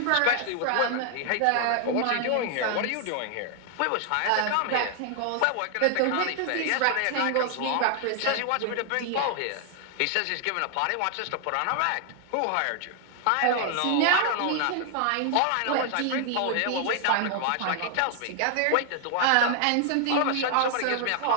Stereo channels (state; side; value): different; both; correlation 0.00